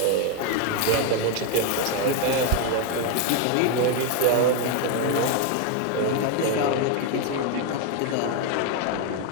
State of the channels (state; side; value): different; both; correlation 0.01